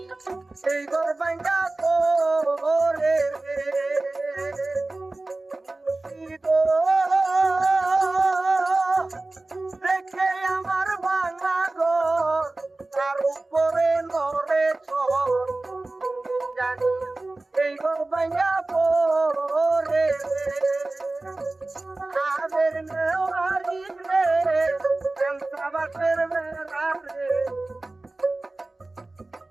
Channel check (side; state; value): left; quieter; 3.0 dB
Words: সেই ঘর ভাঙ্গা করে দেখে আমার ভাঙা ঘর তার উপরে নরে চর জানি এই ঘর ভাঙ্গা করে আদের নেওয়ারি রে বাসের বেড়া রে